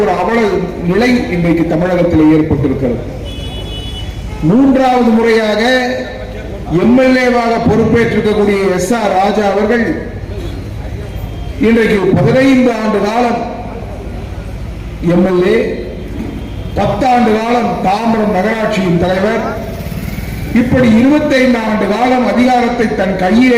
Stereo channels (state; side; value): identical; both; correlation 1.00